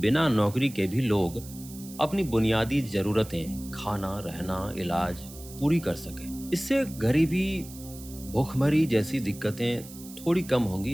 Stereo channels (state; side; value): noise; right; hiss, 17 dB below the sound